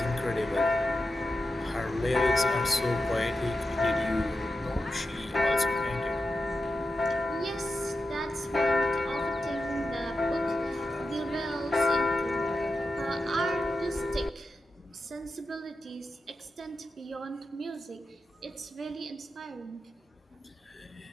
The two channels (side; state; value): both; normal; correlation 0.90